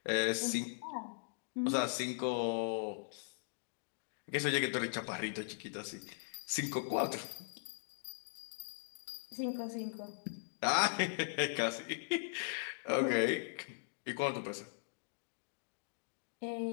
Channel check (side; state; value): right; silent; digital silence